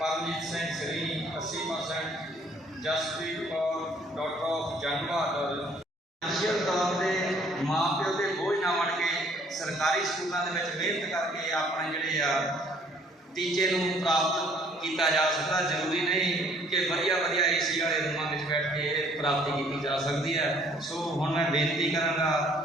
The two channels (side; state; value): both; normal; correlation 0.60